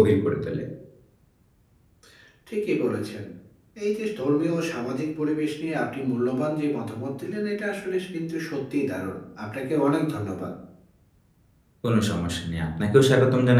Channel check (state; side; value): identical; both; correlation 1.00